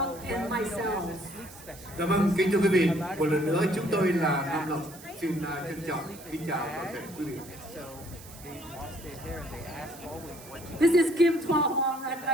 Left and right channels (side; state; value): right; noise; hiss, 18 dB below the sound